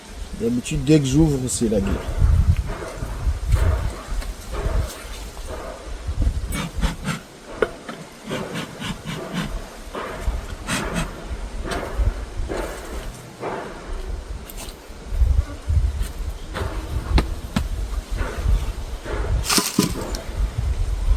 D'habitude, dès que j'ouvre, c'est la guerre.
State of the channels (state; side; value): identical; both; correlation 1.00